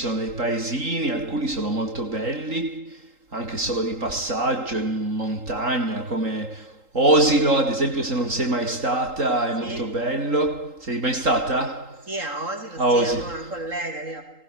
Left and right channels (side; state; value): left; late; 3.8 ms